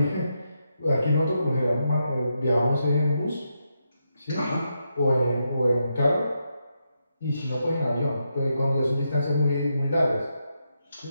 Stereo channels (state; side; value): inverted; both; correlation -0.83